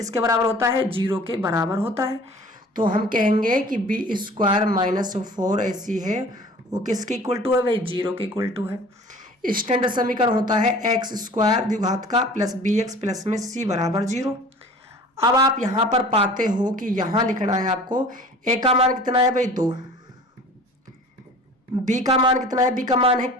बराबर होता है, 0 के बराबर होता है। तो हम कहेंगे कि बी स्क्वायर माइनस 4ac है वो किसके इक्वल टू है भाई, 0 के इक्वल टू है। स्टैंडर्ड समीकरण होता है एक्स स्क्वायर द्विघात का प्लस bx प्लस में c बराबर 0। अब आप यहां पर पाते हो कि यहां लिखना है आपको a का मान कितना है भाई 2, b का मान कितना है, b का मान है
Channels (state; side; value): normal; both; correlation 0.45